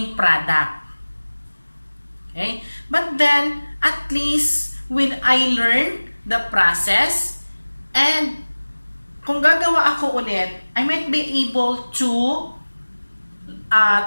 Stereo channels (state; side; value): inverted; both; correlation -1.00